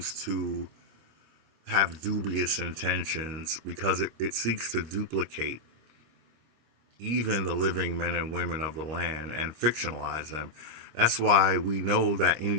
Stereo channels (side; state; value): left; late; 25 ms